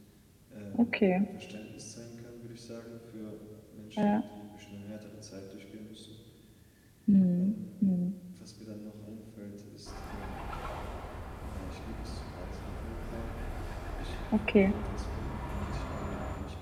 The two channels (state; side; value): identical; both; correlation 1.00